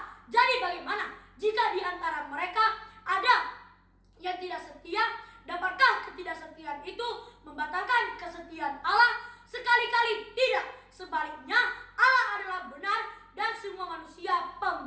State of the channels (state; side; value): identical; both; correlation 1.00